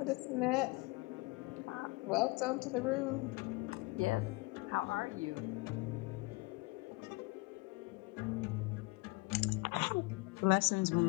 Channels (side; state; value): right; quieter; 24.9 dB